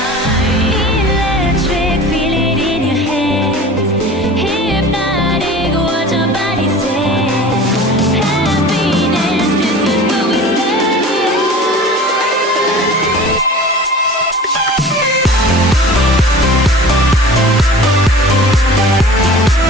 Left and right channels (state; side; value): normal; both; correlation 0.41